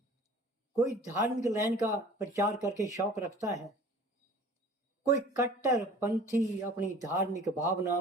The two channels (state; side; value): normal; both; correlation 0.46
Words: कोई धार्मिक लाइन का प्रचार करके शौक रखता है, कोई कट्टर पंथी अपनी धार्मिक